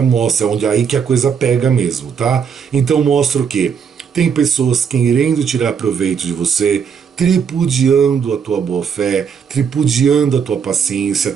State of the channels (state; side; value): quieter; left; 6.9 dB